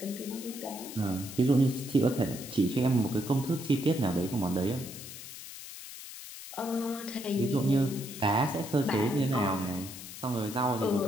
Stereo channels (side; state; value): left; noise; hiss, 12 dB below the sound